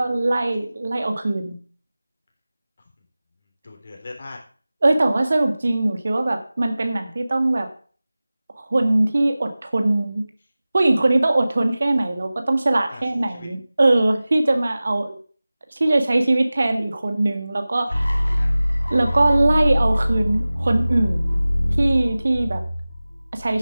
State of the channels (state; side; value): inverted; both; correlation -0.98